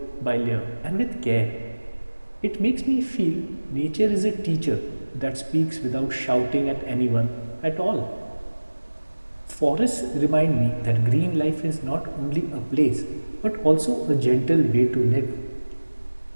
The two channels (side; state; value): both; inverted; correlation -1.00